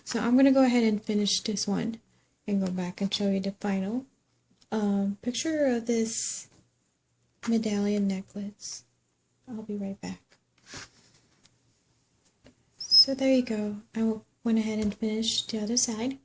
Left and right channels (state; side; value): identical; both; correlation 1.00